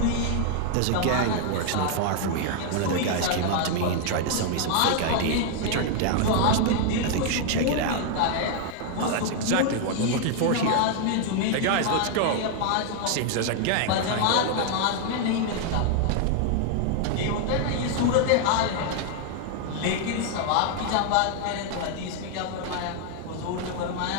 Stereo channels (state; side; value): different; both; correlation 0.00